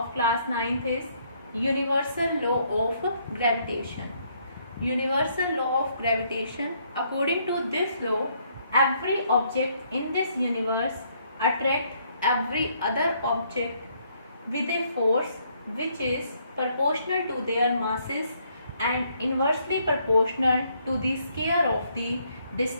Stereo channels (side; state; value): both; inverted; correlation -0.70